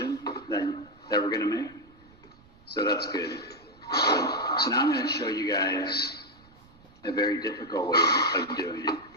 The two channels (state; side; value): noise; right; rumble, 26 dB below the sound